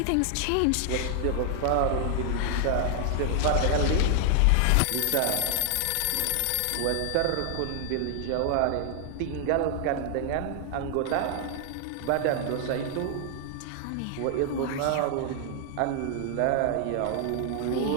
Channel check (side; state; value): both; different; correlation 0.00